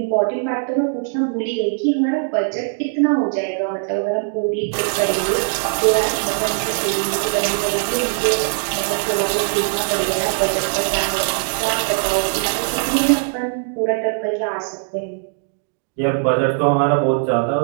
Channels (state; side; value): silent; left; digital silence